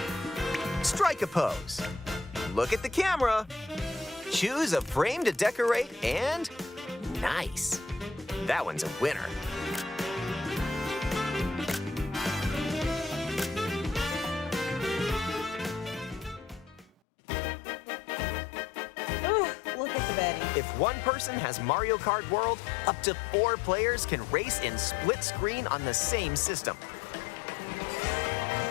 Strike a pose. Look at the camera. Choose a frame to decorate, and nice. That one's a winner. Ugh, look at the baddie. If one person has Mario Kart World, up to 4 players can race in split screen on the same system.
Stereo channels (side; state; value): right; drops out; at 16.9 s